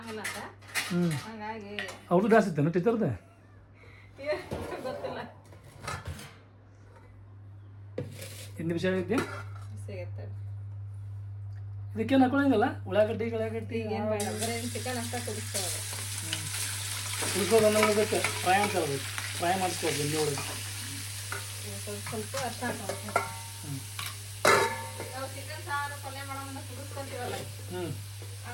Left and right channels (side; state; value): both; identical; correlation 1.00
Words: ಅಂತ. ಹಂಗಾಗಿ ಅವ್ರದ್ದು ಡ್ಯಾನ್ಸ್ ಇತ್ತೇನು ಟೀಚರ್ದೆ? ಗೊತ್ತಿಲ್ಲ. ಹಿಂದಿ ವಿಷಯ ಐತಿ ಸಿಗುತ್ತೆ. ಇದಕ್ಕೇನು ಹಾಕೊಳ್ಳಂಗಿಲ್ಲ ಉಳ್ಳಾಗಡ್ಡಿ ಏನು ಬೇಡ, ಬರೀ ಚಿಕನ್ ಅಷ್ಟ ಕುದಿಸ್ತಾರೆ. ಉಳ್ಕೋದು ಅನ್ನೋದಕ್ಕೆ ಫ್ರೈ ಅಂತ ಹೇಳ್ಬೇಕು. ಫ್ರೈ ಮಾಡಿಸ್ಕೋದು ಇಲ್ಲಿ ಒಳಗೆ ಸ್ವಲ್ಪ ಅರ್ಥ ಹಾಕೋಬೇಕು. ನಾವು ಚಿಕನ್ ಸಾರು ಪಲ್ಯ ಮಾಡೋಣ ಕುದಿಸ್ಕೊಂತೀವಲ್ಲ,